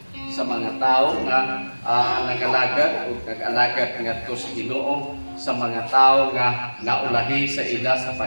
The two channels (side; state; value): both; inverted; correlation -1.00